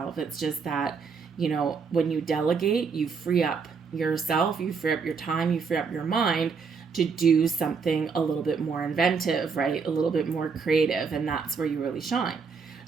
It's just that, when you delegate, you free up yourself, you free up your time, you free up your mind to do something a little bit more inventive, right? A little bit more creative. And that's where you really shine.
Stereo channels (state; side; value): quieter; left; 5.4 dB